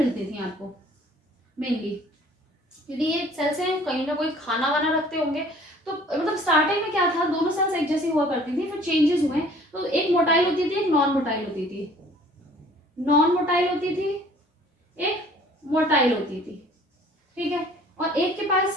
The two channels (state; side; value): normal; both; correlation 0.53